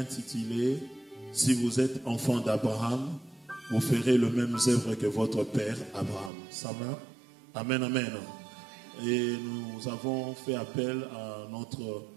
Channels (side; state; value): left; drops out; at 6.3 s